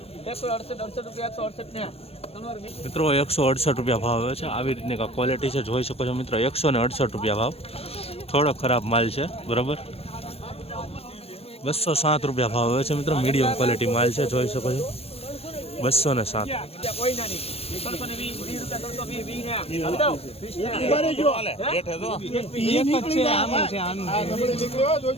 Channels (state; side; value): late; right; 0.29 ms